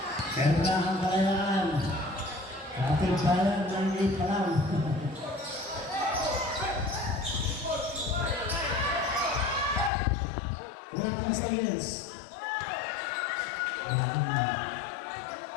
Kaya ang Kalayaan. Kapit bayan ng 8 pa lang. Wala pang silence.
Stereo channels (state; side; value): drops out; right; at 9.9 s